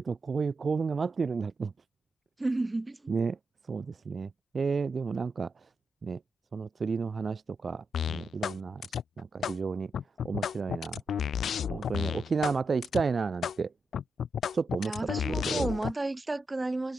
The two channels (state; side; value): normal; both; correlation 0.85